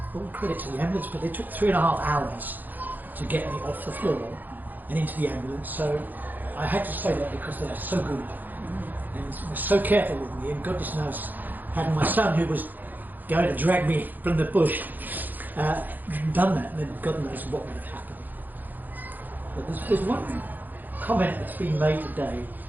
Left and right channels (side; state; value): left; late; 0.086 ms